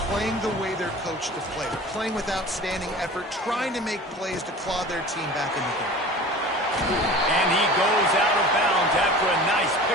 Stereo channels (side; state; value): both; normal; correlation 0.39